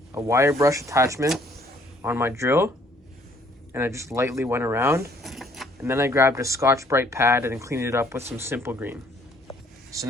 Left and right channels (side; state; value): both; normal; correlation 0.61